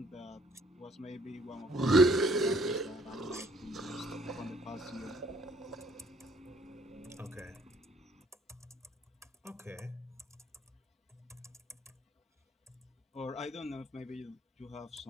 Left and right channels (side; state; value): both; normal; correlation 0.63